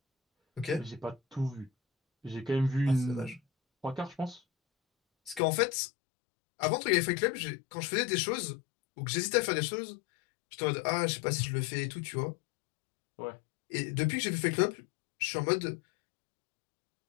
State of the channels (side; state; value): right; drops out; at 5.4 s